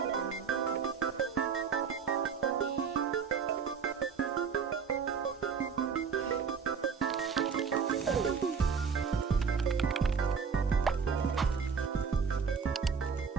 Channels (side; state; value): left; quieter; 6.1 dB